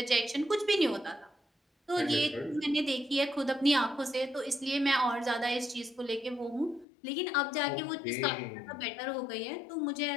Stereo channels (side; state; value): right; drops out; at 6.9 s